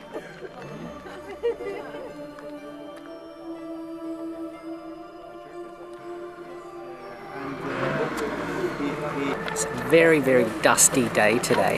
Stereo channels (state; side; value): identical; both; correlation 1.00